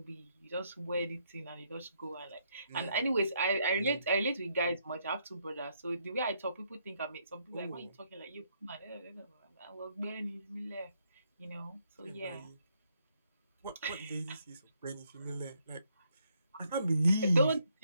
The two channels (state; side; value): inverted; both; correlation -0.73